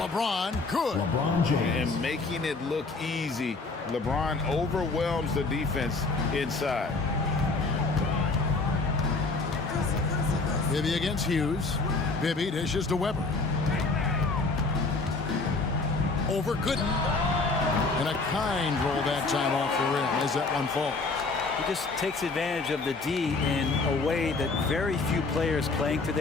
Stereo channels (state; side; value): quieter; right; 3.7 dB